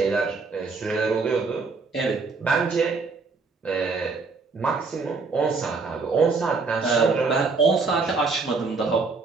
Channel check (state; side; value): quieter; left; 4.3 dB